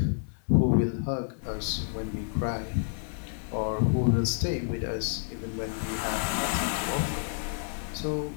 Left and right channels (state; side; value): silent; right; digital silence